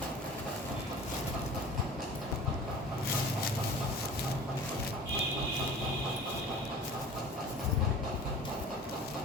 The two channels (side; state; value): both; normal; correlation 0.42